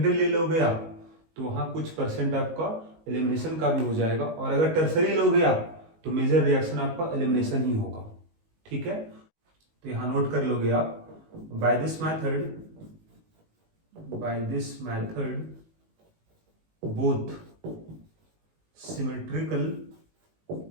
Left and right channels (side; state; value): left; late; 19 ms